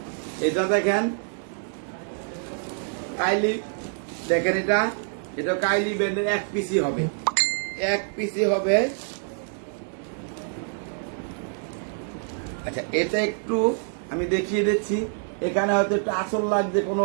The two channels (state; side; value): silent; left; digital silence